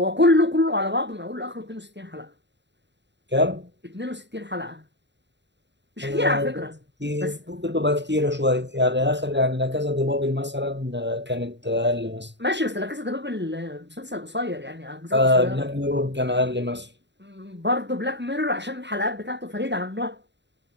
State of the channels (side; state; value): left; late; 0.52 ms